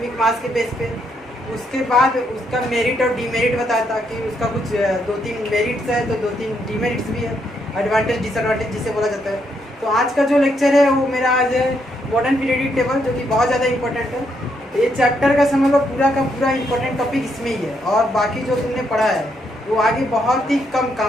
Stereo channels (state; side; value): normal; both; correlation 0.76